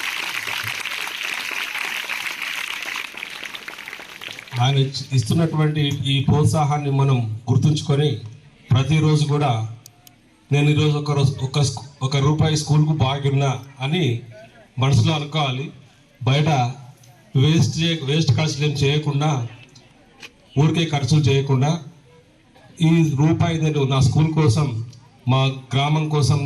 ఆయన ఇస్తున్నటువంటి ఈ ప్రోత్సాహాన్ని మనం గుర్తుంచుకొని ప్రతిరోజు కూడా నేను ఈరోజు ₹1 స్కూల్కు బాగున్నా అని మనసులో అనుకోవాలి. బయట వేస్ట్ ఖర్చులు ఏం చేయకుండా, ఊరికే ఖర్చులు చేయకుండా ఈ రూపాయి నేను నా స్కూల్ కోసం, మా గ్రామం కోసం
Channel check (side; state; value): both; identical; correlation 1.00